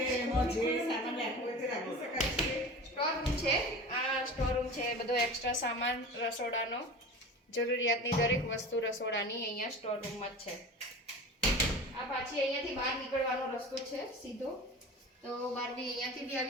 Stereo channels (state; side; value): normal; both; correlation 0.35